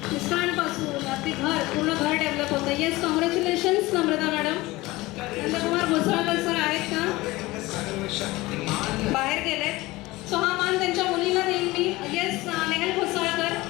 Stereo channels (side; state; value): right; quieter; 20.0 dB